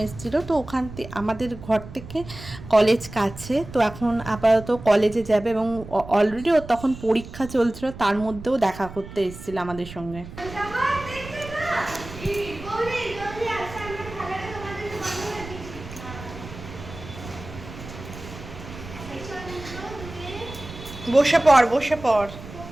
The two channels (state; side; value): noise; right; rumble, 14 dB below the sound